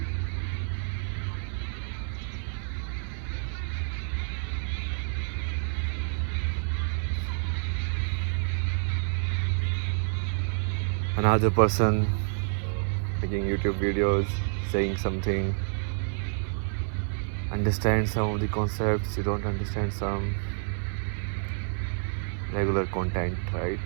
Another person making YouTube videos, saying something, understand some of the concepts, you don't understand some. Regular content, right?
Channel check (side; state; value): left; silent; 59 dB below the other